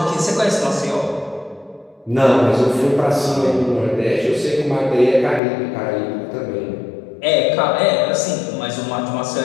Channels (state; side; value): drops out; right; at 5.4 s